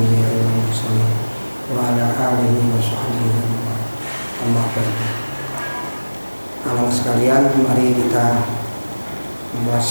wal mursalin wa ala alihi wa sahbihi ajma'in. Amma ba'du. Anak sekalian, mari kita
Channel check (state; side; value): inverted; both; correlation -1.00